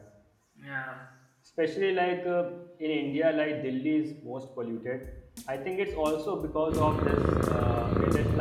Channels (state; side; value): identical; both; correlation 1.00